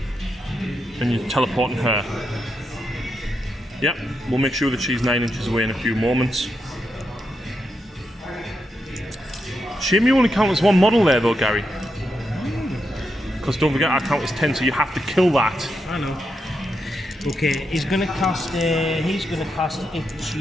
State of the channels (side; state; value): both; normal; correlation 0.84